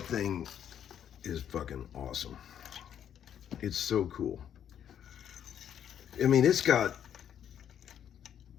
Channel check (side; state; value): right; quieter; 9.4 dB